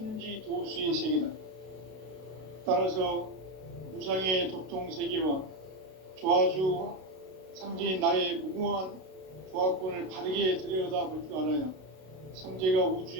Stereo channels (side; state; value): left; late; 32 ms